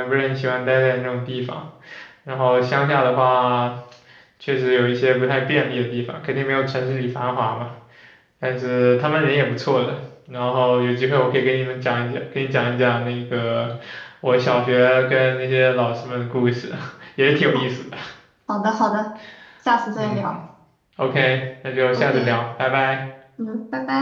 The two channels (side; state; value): both; identical; correlation 1.00